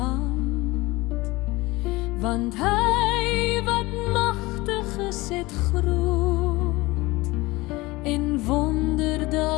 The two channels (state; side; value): quieter; right; 21.2 dB